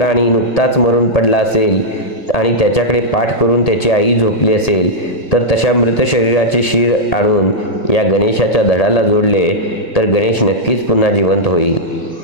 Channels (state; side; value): late; right; 1.7 ms